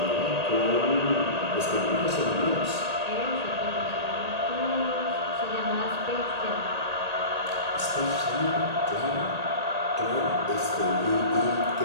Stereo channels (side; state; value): left; late; 1.8 ms